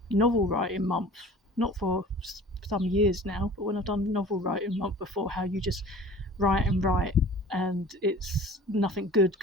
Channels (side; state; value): both; normal; correlation 0.44